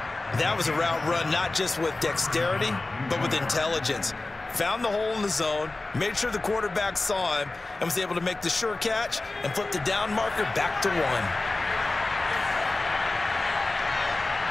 That was a route run not just with dexterity, but with intelligence. Found the hole in the zone, made sure the quarterback saw him, and was able to make the sure catch and flip the down marker back to 1.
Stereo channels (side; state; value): right; quieter; 3.2 dB